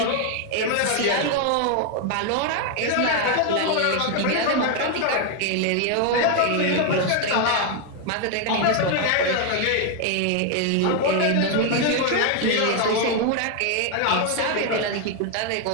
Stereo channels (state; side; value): different; both; correlation 0.01